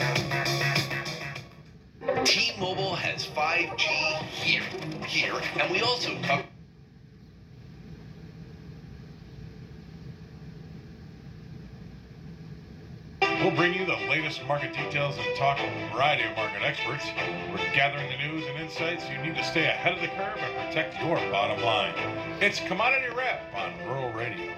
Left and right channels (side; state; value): both; identical; correlation 1.00